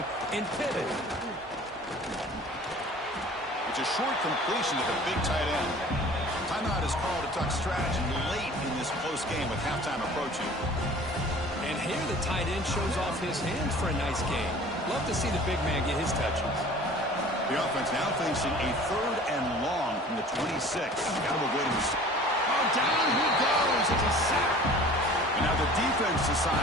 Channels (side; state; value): both; normal; correlation 0.46